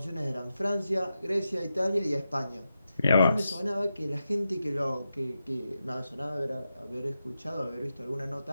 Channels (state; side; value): inverted; both; correlation -0.89